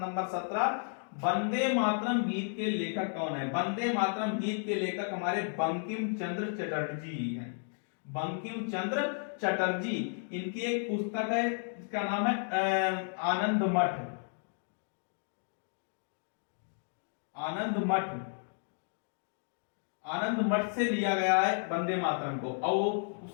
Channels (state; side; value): silent; right; 56 dB below the other